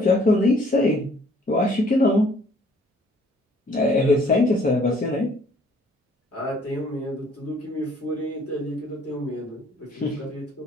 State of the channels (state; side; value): normal; both; correlation 0.59